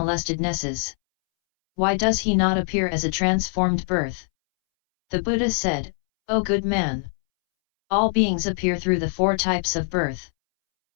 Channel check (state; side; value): silent; right; 63 dB below the other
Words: Why does he not appear as a transformed birth? The Buddha said, O good man! All beings appear through the 4 types of birth.